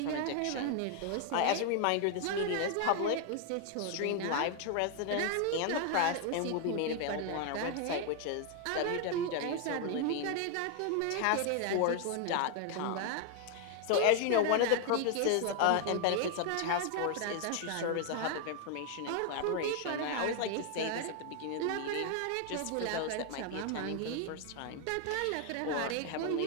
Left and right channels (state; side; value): different; both; correlation 0.00